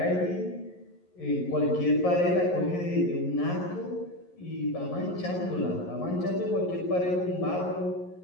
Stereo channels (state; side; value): late; right; 11 ms